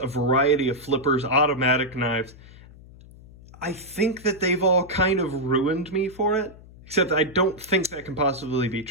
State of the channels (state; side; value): noise; left; hum, 21 dB below the sound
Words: variety of flippers, automatic knives. I think that they've all kind of ruined me for it. Except I don't think that can possibly be